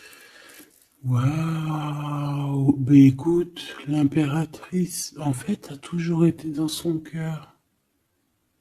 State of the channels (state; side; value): identical; both; correlation 1.00